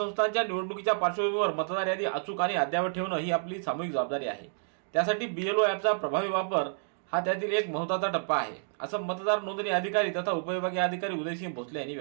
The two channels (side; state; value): left; silent; digital silence